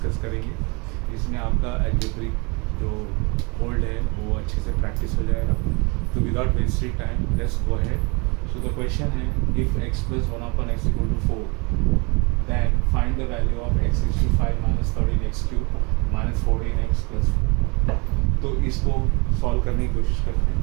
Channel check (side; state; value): left; quieter; 29.8 dB